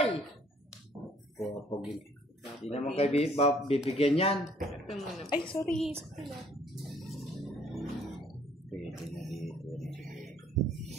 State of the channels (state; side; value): normal; both; correlation 0.61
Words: Pagpapagames. Hindi naman kayo bibigyan yan. Ito muna. Ay, sorry. Pwede na dito.